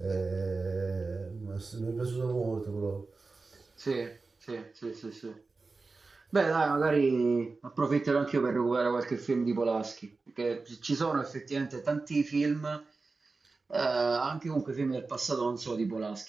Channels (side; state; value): left; quieter; 3.9 dB